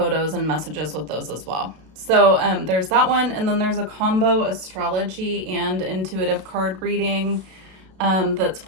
and messages with those as well. So there's that one, and then there's a combo astrology and intuitive card reading. That's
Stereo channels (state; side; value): late; left; 32 ms